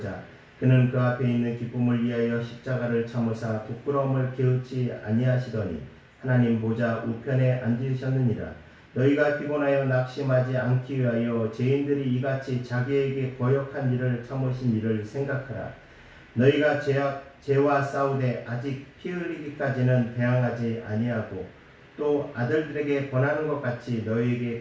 그는 그 앞에 있는 기쁨을 위하여 십자가를 참으사 부끄러움을 게으르지 아니하시더니 하나님 보좌 우편에 앉으셨느니라. 너희가 피곤하여 낙심하지 않기 위하여 죄인들이 이같이 자기에게 거역한 일을 참으신 일을 생각하라. 너희가 죄와 싸우되 아직 피 흘리기까지는 대항하지 아니하고 또 아들들에게 권하는 것 같이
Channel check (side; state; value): both; identical; correlation 1.00